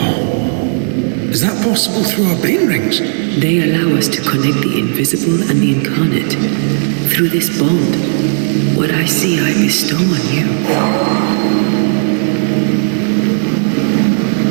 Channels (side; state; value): left; silent; 63 dB below the other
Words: Is that possible through our bane rings? They allow us to connect the invisible and the incarnate. Through this bond, what I see I bestow on you.